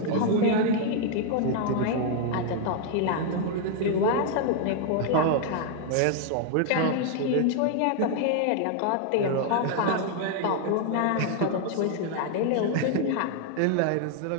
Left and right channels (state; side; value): different; both; correlation 0.00